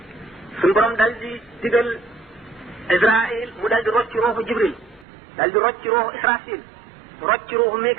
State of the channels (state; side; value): drops out; left; at 5.1 s